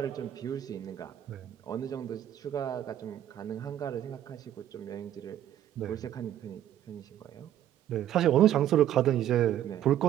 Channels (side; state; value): left; quieter; 11.5 dB